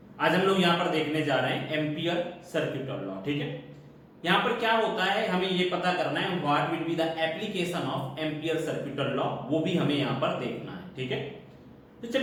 आज हम लोग यहाँ पर देखने जा रहे हैं एम्पियर सर्क्यूटल लॉ. ठीक है, यहाँ पर क्या होता है हमें ये पता करना है what will be the application of ampere circuital law, वो भी हमें यहाँ पर देखना है. ठीक है, तो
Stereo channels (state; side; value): identical; both; correlation 1.00